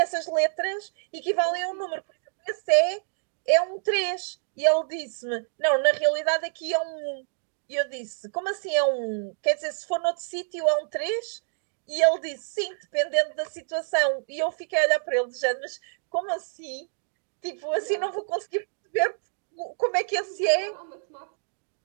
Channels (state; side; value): silent; left; digital silence